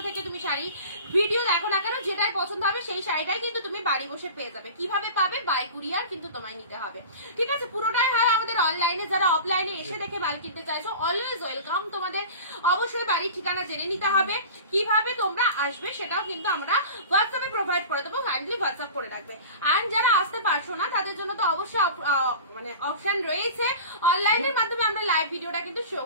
থেকে তুমি শাড়ি ভিডিও দেখো না কেন, যেটাই পছন্দ হবে সেই শাড়িটাই কিন্তু তুমি বাড়ি বসে পেয়ে যাবে। কিভাবে পাবে? বাই কুরিয়ার কিন্তু তোমায় নিতে হবে। ঠিক আছে, পুরোটাই হয় আমাদের অনলাইনে। যারা অফলাইনে এসে দেখে মাল কিনতে চাইছো অলওয়েজ ওয়েলকাম। তোমাদের অবশ্যই বাড়ির ঠিকানা জেনে নিতে হবে। কিভাবে তোমরা আসবে সেটাও কিন্তু আমরা হোয়াটসঅ্যাপে প্রোভাইড করে দেবো, কাইন্ডলি হোয়াটসঅ্যাপ করে রাখবে। এন্ড যারা আসতে পারছো না তাদের জন্য তো অবশ্যই মানে অপশন রয়েছে, অনলাইনের মাধ্যমে আমরা লাইভ ভিডিওটা কিন্তু শো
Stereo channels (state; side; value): inverted; both; correlation -0.36